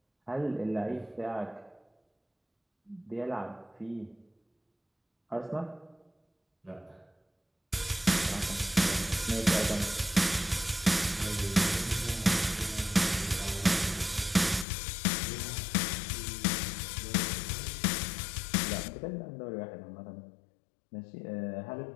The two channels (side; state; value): right; drops out; at 14.7 s